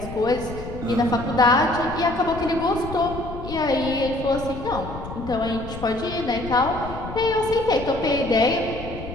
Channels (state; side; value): noise; left; rumble, 11 dB below the sound